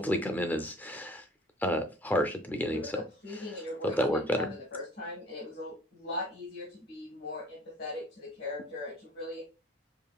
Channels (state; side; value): normal; both; correlation 0.51